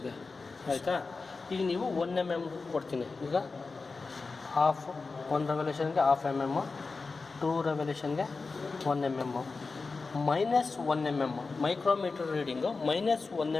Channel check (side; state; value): right; quieter; 4.1 dB